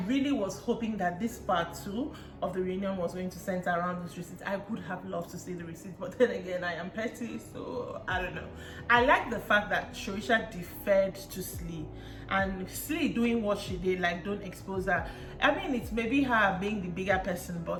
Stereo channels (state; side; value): identical; both; correlation 1.00